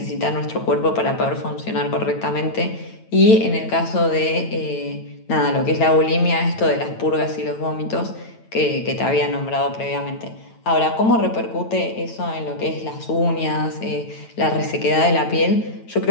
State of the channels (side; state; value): right; late; 9.0 ms